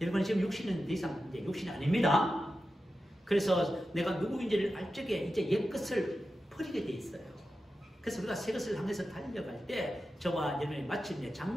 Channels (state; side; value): normal; both; correlation 0.91